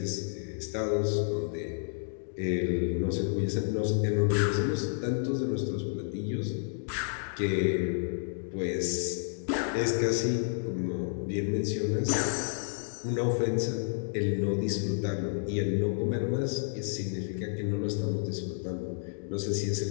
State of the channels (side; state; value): right; silent; digital silence